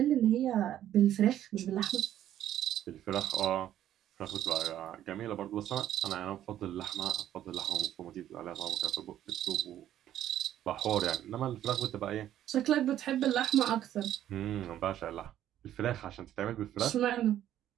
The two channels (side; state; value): left; quieter; 11.8 dB